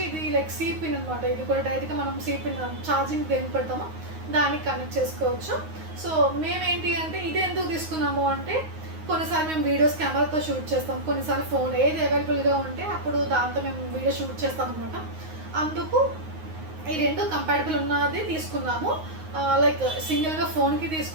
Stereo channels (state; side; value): late; left; 9.5 ms